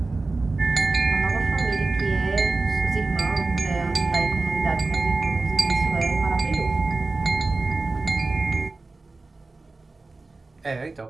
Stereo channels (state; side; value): quieter; left; 3.5 dB